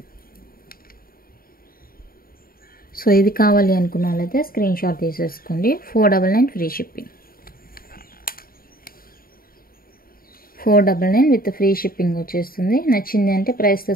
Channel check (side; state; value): right; late; 0.43 ms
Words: సో ఇది కావాలి అనుకున్న వాళ్ళైతే స్క్రీన్ షాట్ తీసేసుకోండి. 499 free shipping. 499 with free shipping వచ్చేస్తుంది. నచ్చింది అంటే ప్రైస్తో